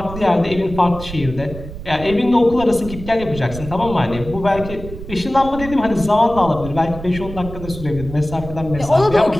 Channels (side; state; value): right; noise; rumble, 11 dB below the sound